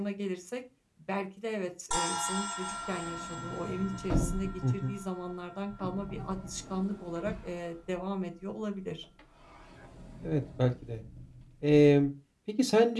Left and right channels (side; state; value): both; identical; correlation 1.00